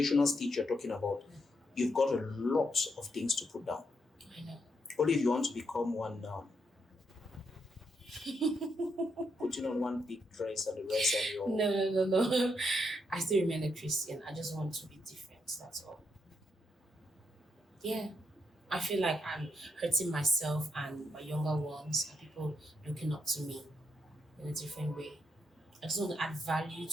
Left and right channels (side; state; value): both; normal; correlation 0.79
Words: stage you're talking about, you've got a lot of things to put down. I know. Only if you want to become one now. Putting on one big dress and the rest and your... No. I still remain a Christian. I just want to be different. That's all. Yeah. I feel like I'm hurting myself and my younger ones and people looking up to me in a different way. I just want to add value